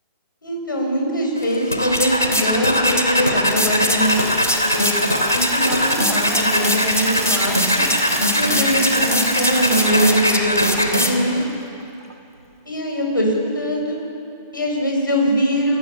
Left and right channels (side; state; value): both; inverted; correlation -0.50